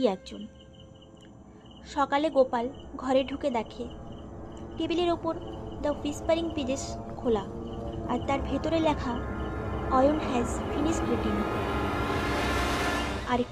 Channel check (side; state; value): both; identical; correlation 1.00